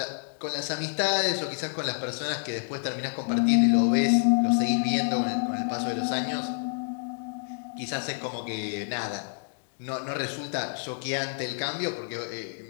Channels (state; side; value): silent; right; digital silence